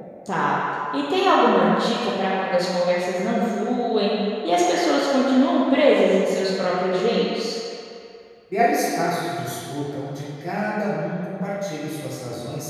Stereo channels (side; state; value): both; identical; correlation 1.00